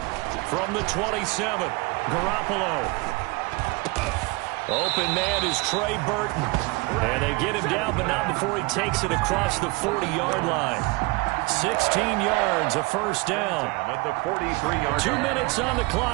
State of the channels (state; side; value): quieter; left; 26.0 dB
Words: From the 27, Garoppolo. Open man is Trey Burton. And they get him down, but not before he takes it across the 40-yard line. 16 yards, a first down. At the 43-yard 2 minutes on the